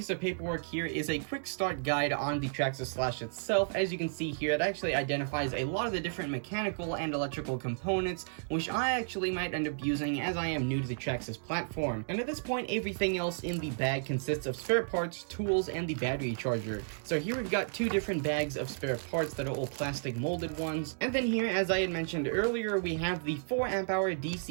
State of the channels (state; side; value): silent; left; digital silence